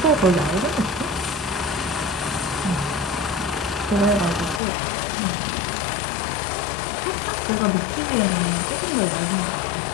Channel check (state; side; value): drops out; right; at 4.6 s